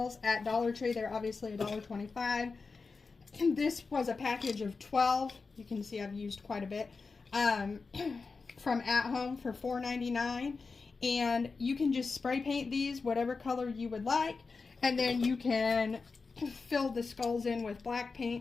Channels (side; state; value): right; quieter; 4.4 dB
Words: at Dollar Tree. They're obviously $1.25. This was a package of 12. You can see I've used quite a bit. From At Home for $4.99. And you can just spray paint these whatever color you would like, and then you can fill the skulls in with black